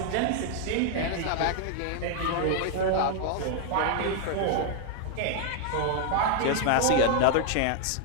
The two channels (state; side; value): different; both; correlation 0.00